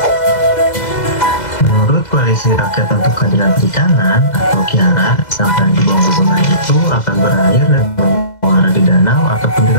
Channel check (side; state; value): right; late; 2.0 ms